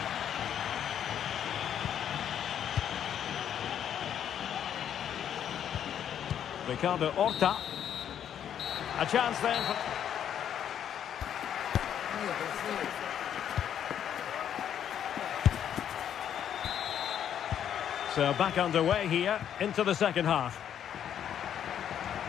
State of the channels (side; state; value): right; quieter; 9.5 dB